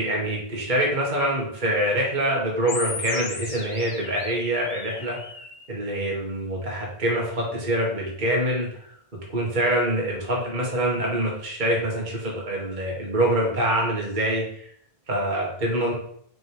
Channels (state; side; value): late; left; 1.5 ms